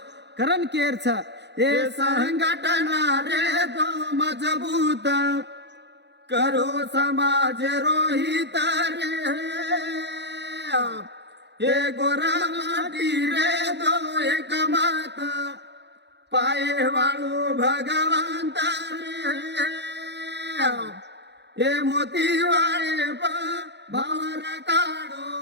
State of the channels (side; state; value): left; late; 0.50 ms